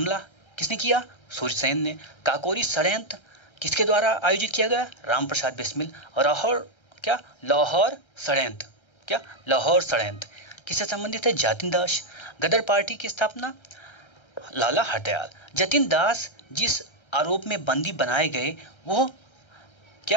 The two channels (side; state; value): right; late; 1.3 ms